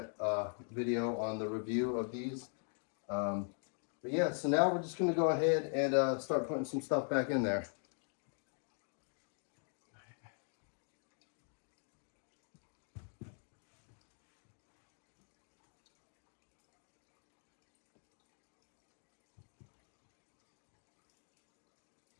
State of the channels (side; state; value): right; silent; 50 dB below the other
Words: video on the review of these. But yeah, so now we're just going to go ahead and start putting some stuff back in there.